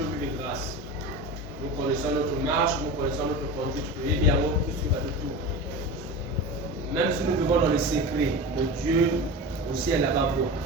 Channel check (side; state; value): both; normal; correlation 0.29